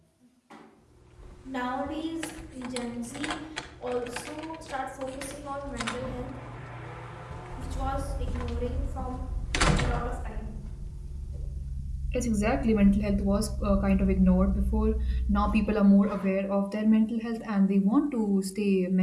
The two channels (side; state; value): both; identical; correlation 1.00